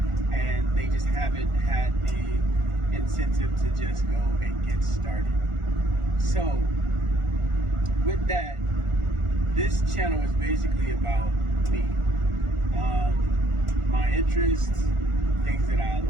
and they just haven't had the incentive to just go and get started. So with that, this channel is basically about me, my interests, things that I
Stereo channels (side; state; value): left; late; 1.4 ms